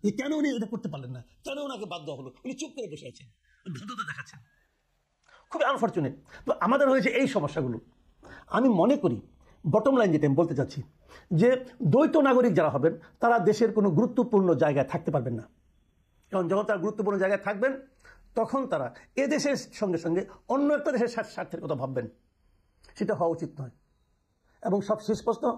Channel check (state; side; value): identical; both; correlation 1.00